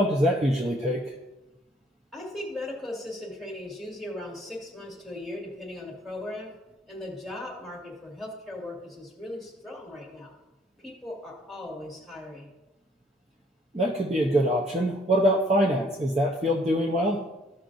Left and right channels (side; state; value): both; normal; correlation 0.63